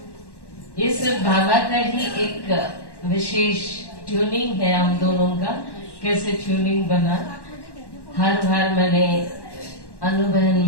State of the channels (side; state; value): right; late; 1.1 ms